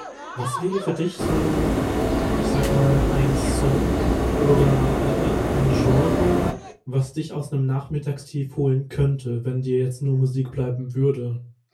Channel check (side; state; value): both; identical; correlation 1.00